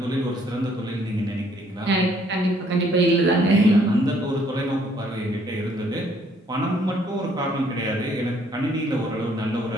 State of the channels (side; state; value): both; normal; correlation 0.64